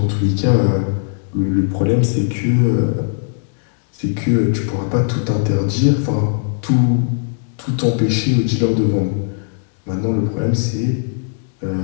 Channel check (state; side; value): silent; right; digital silence